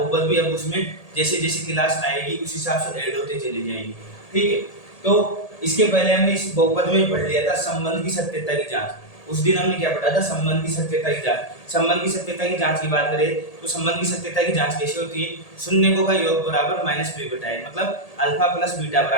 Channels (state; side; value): late; right; 1.8 ms